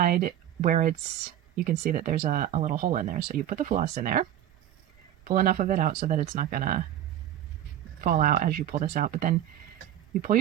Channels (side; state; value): left; quieter; 11.5 dB